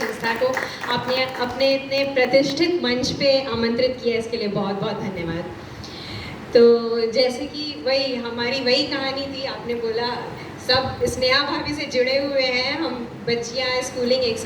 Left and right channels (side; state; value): both; identical; correlation 1.00